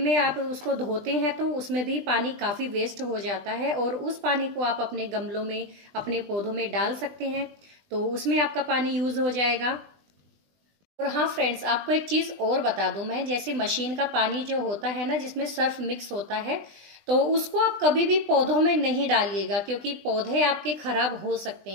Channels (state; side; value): late; left; 20 ms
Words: आप उसको धोते हैं, तो उसमें भी पानी काफी वेस्ट हो जाता है, और उस पानी को आप अपने गमलों में, अपने पौधों में डाल सकते हैं, तो उसमें आपका पानी यूज हो जाएगा। और हाँ फ्रेंड्स, आपको एक चीज और बता दूं मैं, जैसे मशीन का पानी जो होता है ना, जिसमें सर्फ मिक्स होता है, तो उसको आप कभी भी पौधों में नहीं डालिएगा, क्योंकि पौधे आपके खराब हो सकते